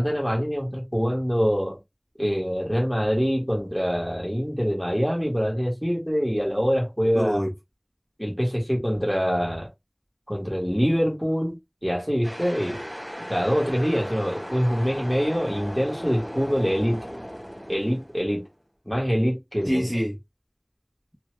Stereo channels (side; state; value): both; identical; correlation 1.00